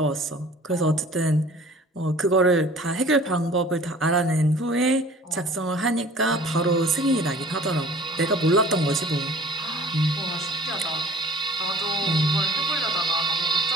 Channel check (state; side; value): normal; both; correlation 0.48